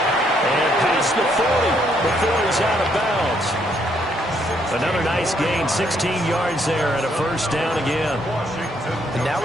And past the 40 before he's out of bounds. Another nice gain, 16 yards there and a 1st down again. And now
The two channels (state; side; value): normal; both; correlation 0.71